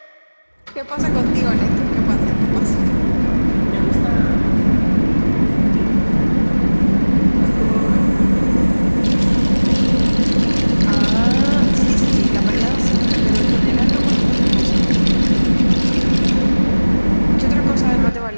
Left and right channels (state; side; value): inverted; both; correlation -1.00